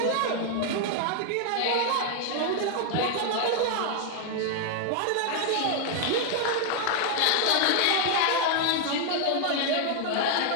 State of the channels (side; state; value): both; different; correlation 0.00